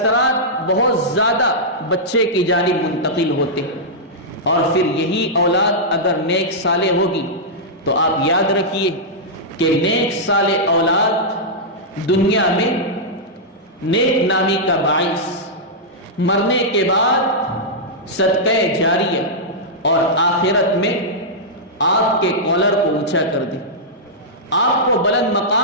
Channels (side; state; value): both; normal; correlation -0.10